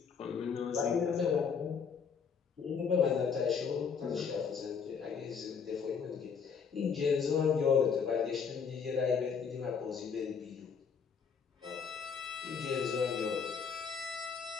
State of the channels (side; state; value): right; quieter; 6.2 dB